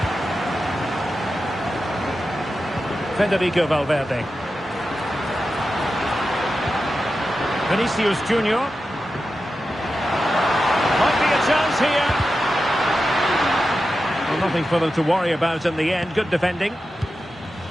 Federico Valverde. Vinicius Junior. Might be a chance here. Well, nothing for them to worry about in the end. Good defending.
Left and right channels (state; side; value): normal; both; correlation 0.91